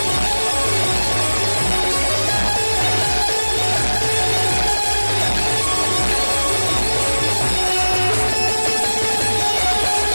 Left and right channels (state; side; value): inverted; both; correlation -1.00